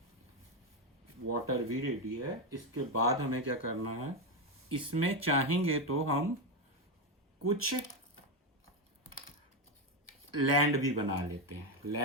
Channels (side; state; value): both; normal; correlation 0.09